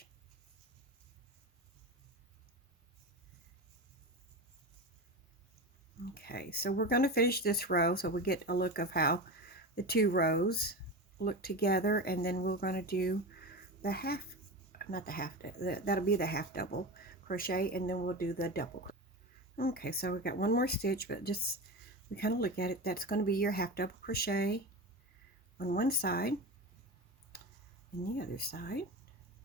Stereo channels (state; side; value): normal; both; correlation 0.24